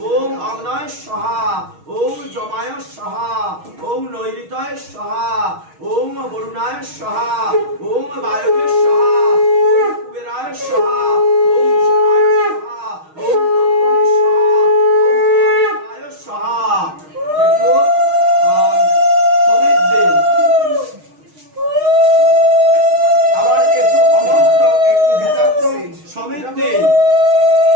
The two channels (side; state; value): left; late; 6.4 ms